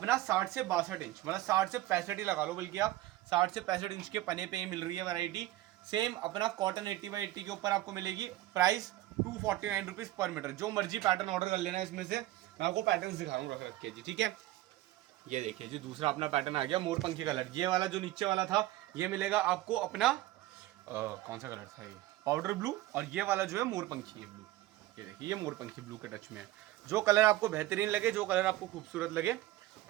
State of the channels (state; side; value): quieter; left; 16.1 dB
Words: 60 से 62 इंच, मतलब 60 से 65 ही लगा लो, बल्कि आप 60 से 65 इंच के पने पे ही मिल रही है वैरायटी। सेम अपना कॉटन 80x80 के ऊपर आपको मिलेगी। Price 249 rupees per metre. जो मर्जी पैटर्न ऑर्डर कर लेना इसमें से, मैं आपको पैटर्न दिखाऊंगा रख के जी, ठीक है। ये देखिए जी, दूसरा अपना पैटर्न आ गया मोरपंखी कलर। ये वाला जो नीचे वाला था ये मिलेगा आपको अपना कौन सा कलर था, ये पाउडर ब्लू, और ये वाला जो है मोरपंखी ब्लू। ये देखिए, ये मोरपंखी ब्लू के टच में है। जो कलर आपको बेहतरीन लगे, जो कलर आपको खूबसूरत लगे,